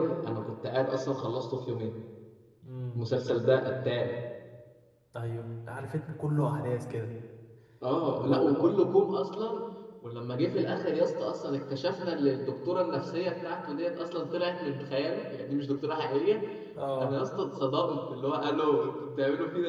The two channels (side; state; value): both; identical; correlation 1.00